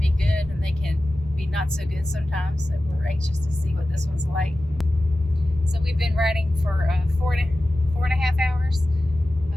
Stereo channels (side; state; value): both; normal; correlation 0.95